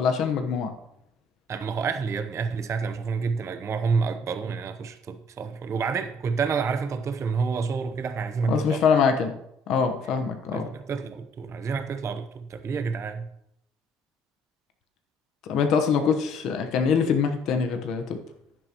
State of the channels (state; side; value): normal; both; correlation 0.62